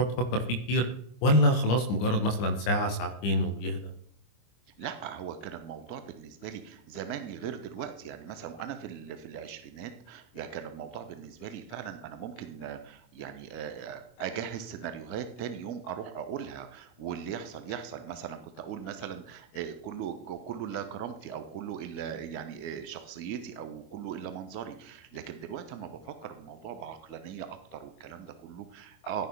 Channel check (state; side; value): late; right; 25 ms